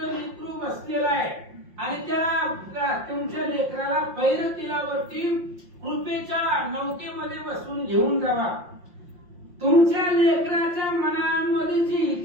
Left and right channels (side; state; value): left; late; 5.7 ms